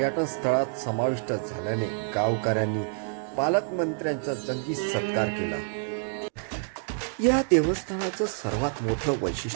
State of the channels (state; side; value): silent; left; 60 dB below the other